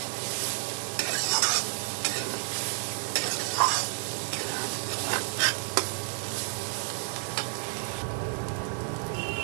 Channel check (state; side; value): silent; left; 58 dB below the other